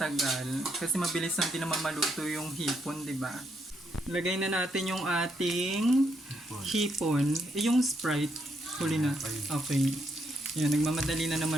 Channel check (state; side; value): normal; both; correlation 0.77